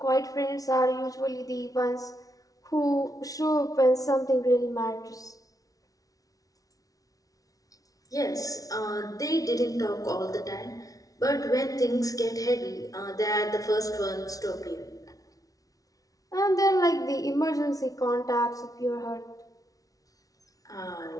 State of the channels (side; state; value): right; late; 0.18 ms